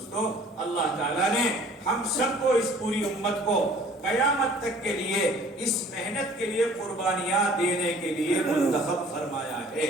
اللہ تعالیٰ نے ہم سب کو، اس پوری امت کو قیامت تک کے لیے اس محنت کے لیے قربانیاں دینے کے لیے منتخب فرمایا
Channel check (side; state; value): both; normal; correlation 0.52